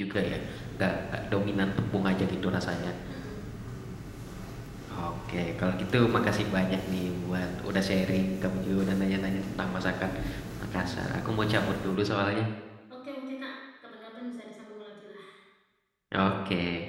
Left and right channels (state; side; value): identical; both; correlation 1.00